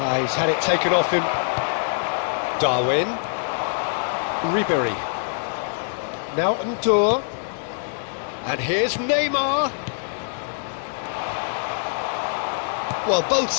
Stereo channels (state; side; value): silent; right; 60 dB below the other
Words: He's had it taken off him. Darwin. Ribery. Now Ndour. And here's Neymar. Well, both